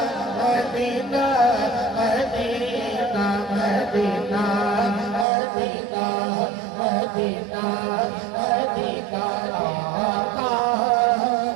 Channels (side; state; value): left; drops out; at 5.2 s